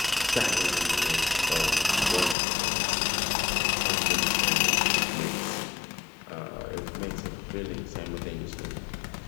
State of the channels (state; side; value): drops out; right; at 2.4 s